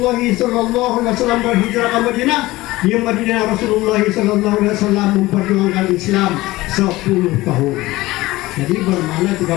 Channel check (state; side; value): quieter; right; 18.8 dB